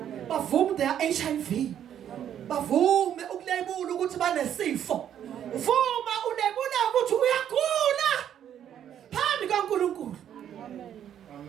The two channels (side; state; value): left; quieter; 9.9 dB